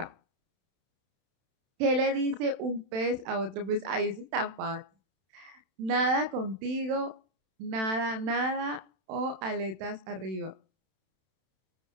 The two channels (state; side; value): late; left; 32 ms